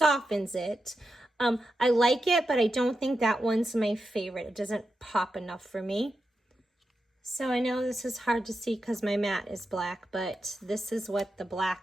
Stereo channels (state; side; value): normal; both; correlation 0.88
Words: it. I like it, but I don't think that one's my favorite. It doesn't pop enough for me. So I know this is hard to see because my mat is black, but this is what the